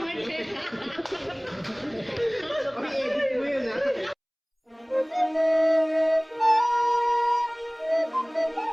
again. Okay, edit mo yun ah.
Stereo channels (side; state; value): both; identical; correlation 1.00